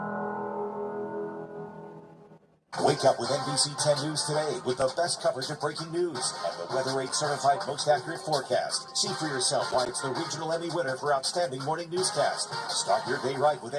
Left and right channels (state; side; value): identical; both; correlation 1.00